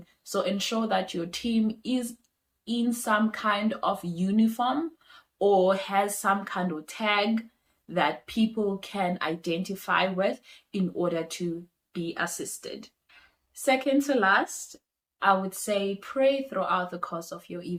So ensure that your team is in some kind of uniform or has some kind of tag that people can identify with in order to be assisted. Second to last, I would say pray throughout the course of your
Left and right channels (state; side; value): identical; both; correlation 1.00